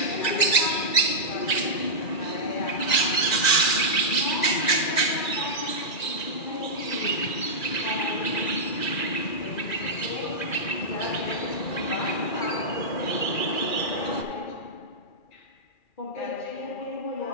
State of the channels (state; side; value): late; right; 2.4 ms